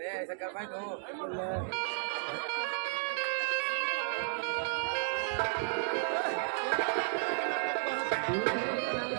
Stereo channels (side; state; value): left; silent; digital silence